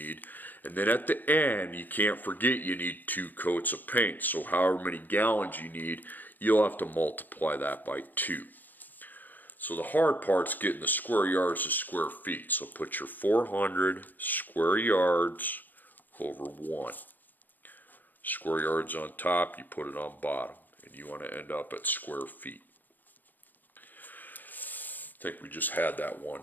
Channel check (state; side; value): late; right; 0.087 ms